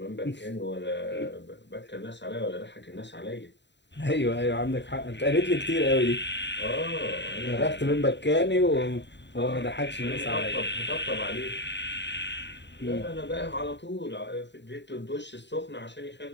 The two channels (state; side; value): late; right; 0.52 ms